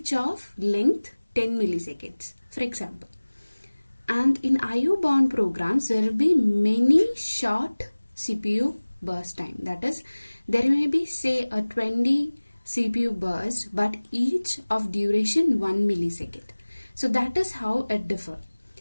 of length 10 milliseconds, for example. And in IO bound programs, there will be many short CPU burst time. That is, there may be say a 20 CPU burst but each of duration 1 millisecond. So that is how it differs.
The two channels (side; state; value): both; inverted; correlation -1.00